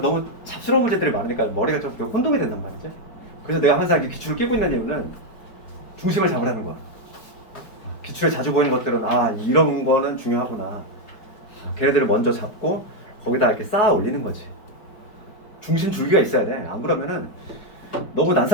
잡스러운 문제들이 많으니까 머리가 좀 혼동이 된단 말이지. 그래서 내가 항상 이렇게 기출을 끼고 있는 이유는 중심을 잡으라는 거야. 기출에 자주 보이는 것들은 이런 거는 중요하구나. 걔네들을 먼저 잡고 거기다 이렇게 쌓아 올리는 거지. 중심 줄기가 있어야 돼. 안 그러면은 너무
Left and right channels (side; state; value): right; late; 4.9 ms